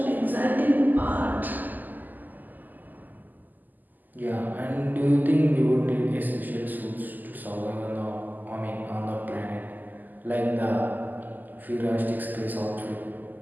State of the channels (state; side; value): late; left; 0.085 ms